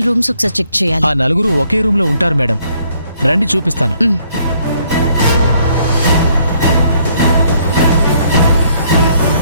రూమ్స్ ఒకసారి చెక్ చేయాలి. ఆ నలుగురు ఒకే రూమ్ లో ఉంటారు మేడం, రండి చూపిస్తాను.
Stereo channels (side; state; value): both; inverted; correlation -0.67